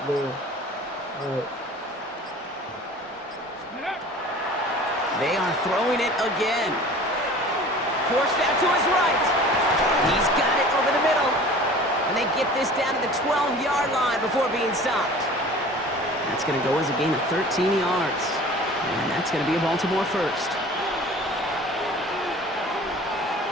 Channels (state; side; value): normal; both; correlation 0.43